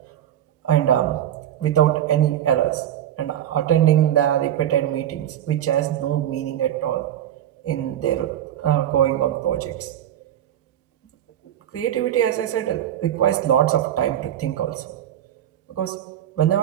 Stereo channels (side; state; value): left; quieter; 11.1 dB